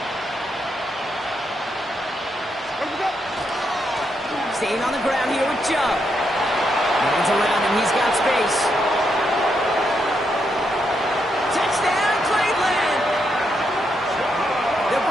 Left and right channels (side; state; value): both; normal; correlation 0.80